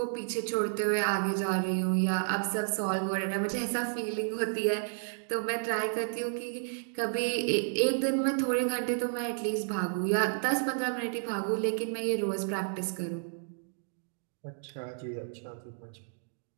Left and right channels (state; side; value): silent; left; digital silence